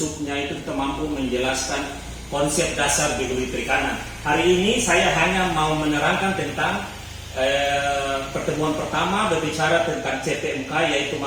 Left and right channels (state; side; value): identical; both; correlation 1.00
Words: itu kita mampu menjelaskan konsep dasar biologi perikanan. Hari ini saya hanya mau menerangkan tentang pertemuan pertama berbicara tentang CPMK, yaitu